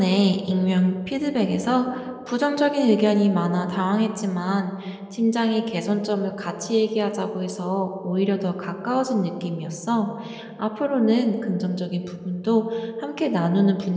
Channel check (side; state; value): both; identical; correlation 1.00